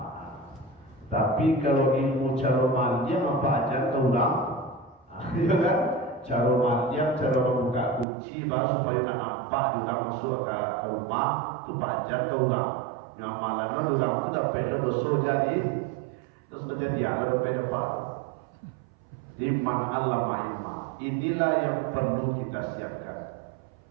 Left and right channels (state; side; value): drops out; left; at 8.1 s